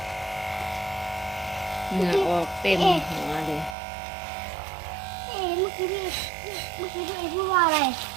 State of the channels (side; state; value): left; drops out; at 3.8 s